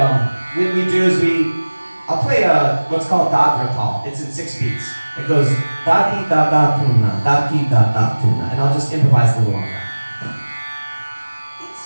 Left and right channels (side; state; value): both; inverted; correlation -1.00